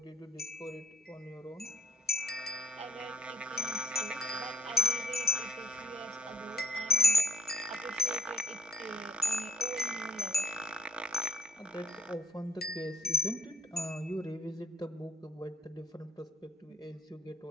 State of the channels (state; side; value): normal; both; correlation 0.63